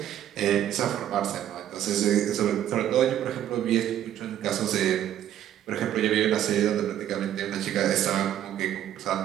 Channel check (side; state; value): left; quieter; 11.2 dB